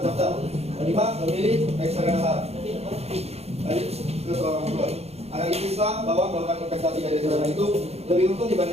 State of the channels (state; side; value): late; left; 0.30 ms